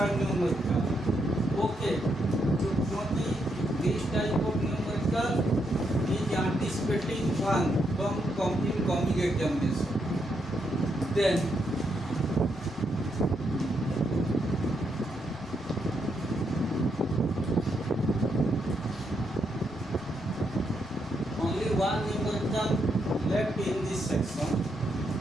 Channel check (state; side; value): noise; left; hum, 25 dB below the sound